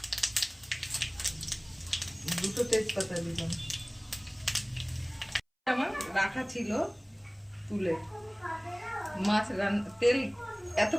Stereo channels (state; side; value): identical; both; correlation 1.00